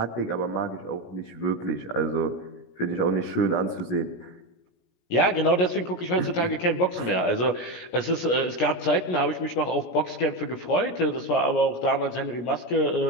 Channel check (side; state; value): right; late; 17 ms